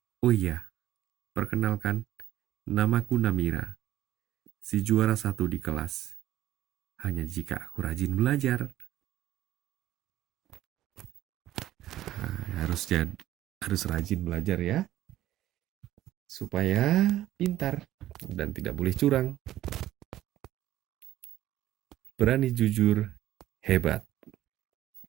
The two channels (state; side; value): quieter; left; 13.8 dB